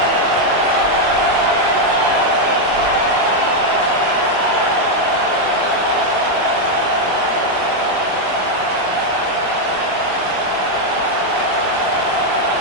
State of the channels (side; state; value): left; late; 22 ms